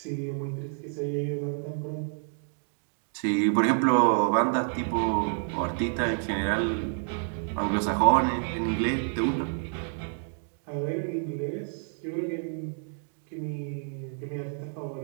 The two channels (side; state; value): left; silent; 58 dB below the other